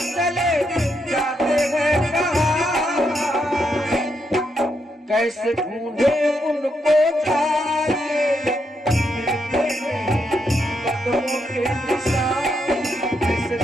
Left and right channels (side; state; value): both; normal; correlation 0.79